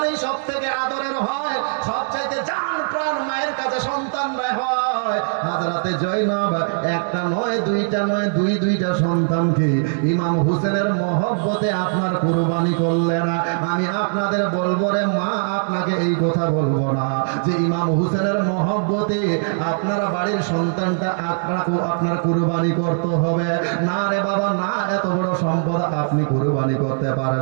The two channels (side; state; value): left; silent; digital silence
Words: সব থেকে আদরের হয়, সবচাইতে জান প্রাণ মায়ের কাছে সন্তানরা হয়। হাজরাতে জয়নাব একটা নয় দুইটা নয়, দুইটা সন্তানকে ইমাম হুসেনের মহব্বতে আপনার কুরবানি করলেন। আমি আপনাদের বলবো রে মা, আপনাকে এই কথা বলবো না যে ইমাম হুসেনের মহব্বতে আপনার বাড়ির সন্তানটা আপনার কুরবানি করতে হবে, না রে বাবা না, এত বড় সম্পদ আপনি কুরবানি করতে